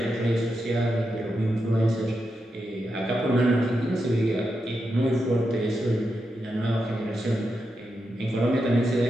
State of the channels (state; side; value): normal; both; correlation 0.86